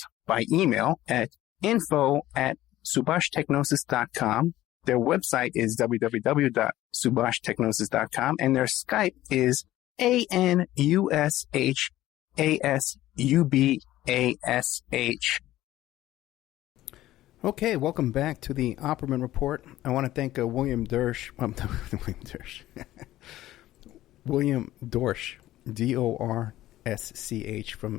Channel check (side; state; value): right; quieter; 14.9 dB